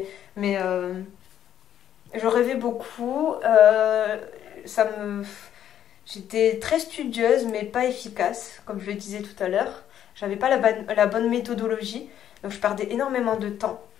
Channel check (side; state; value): right; quieter; 10.4 dB